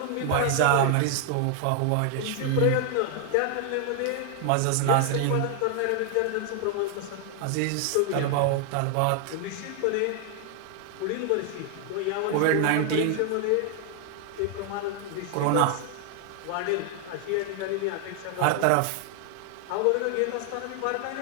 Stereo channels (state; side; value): different; both; correlation 0.00